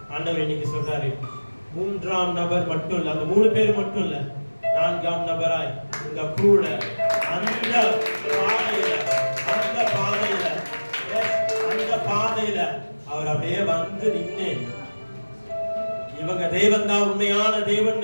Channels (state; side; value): inverted; both; correlation -1.00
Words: ஆண்டவர் இன்னைக்கு சொல்றாரு, 3ஆம் நபர் மட்டும் இல்ல, அந்த 3 பேர் மட்டும் இல்ல, 4ஆம் நபராய் உங்க கூட அந்த பாதையில அவர் அப்படியே வந்து நின்று, இவங்க தேவன் தான் உண்மையான தேவன்